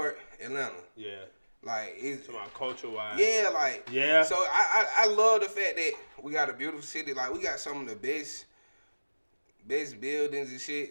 Atlanta. Yeah. Like it's about culture wise. Yeah, like yeah. So I love the fact that we got a beautiful city. Like we got some of the best buildings and shit.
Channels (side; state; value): both; inverted; correlation -1.00